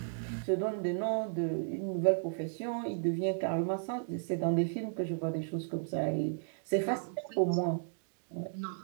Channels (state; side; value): silent; left; digital silence